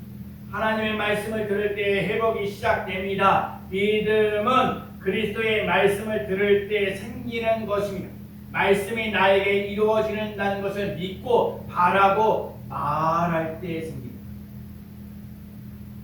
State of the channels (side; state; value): both; identical; correlation 1.00